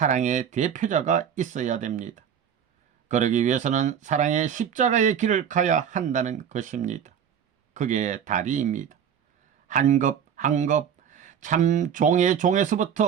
대표자가 있어야 됩니다. 그러기 위해서는 사랑의 십자가의 길을 가야 한다는 것입니다. 그게 다리입니다. 한 급 한 급 참 종의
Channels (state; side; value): quieter; left; 8.3 dB